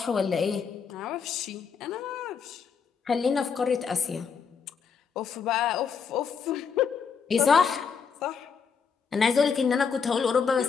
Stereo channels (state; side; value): quieter; right; 6.1 dB